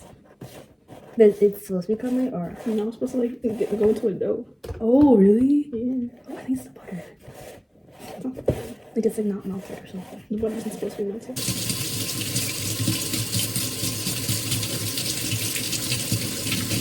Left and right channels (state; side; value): identical; both; correlation 1.00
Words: But it's supposed to be crumbly or? You know, I'm supposed to like go into a dough. Oh, really? Yeah. Oh, I think it's the butter. It's not bad. Like it's like not melted or something. The butter isn't supposed to be melted.